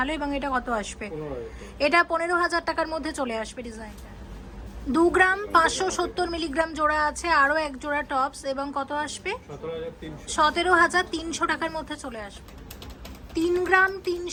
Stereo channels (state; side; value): identical; both; correlation 1.00